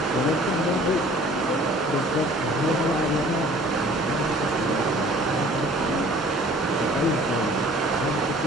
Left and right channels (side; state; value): both; normal; correlation 0.51